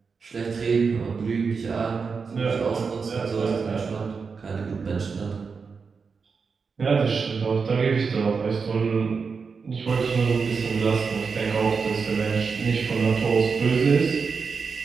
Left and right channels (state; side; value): quieter; left; 5.2 dB